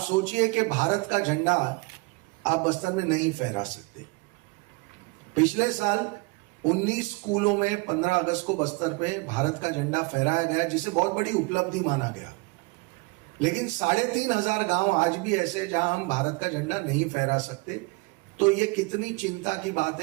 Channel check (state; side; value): quieter; left; 27.7 dB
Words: सोचिए कि भारत का झंडा आप बस्तर में नहीं फहरा सकते। पिछले साल 19 स्कूलों में 15 अगस्त को बस्तर पे भारत का झंडा फहराया गया, जिसे बहुत बड़ी उपलब्धि माना गया। लेकिन 3500 गांव आज भी ऐसे हैं जहां हम भारत का झंडा नहीं फहरा सकते। तो ये कितनी चिंता की बात